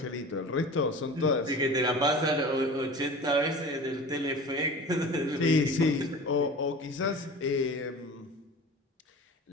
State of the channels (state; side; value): normal; both; correlation 0.37